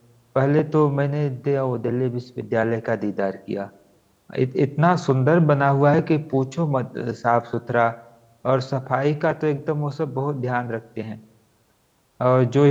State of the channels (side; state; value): both; identical; correlation 1.00